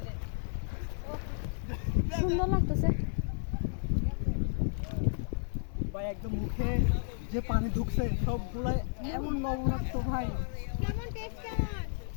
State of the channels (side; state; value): right; silent; digital silence